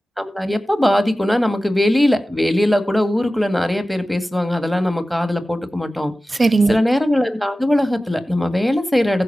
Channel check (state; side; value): normal; both; correlation 0.95